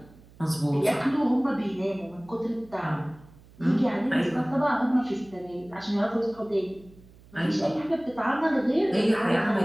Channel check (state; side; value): noise; right; hum, 24 dB below the sound